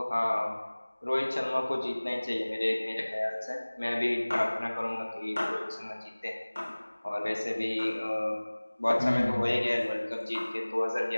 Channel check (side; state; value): both; inverted; correlation -1.00